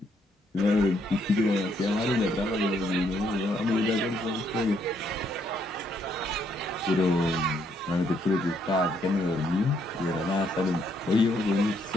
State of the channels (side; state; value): both; normal; correlation 0.72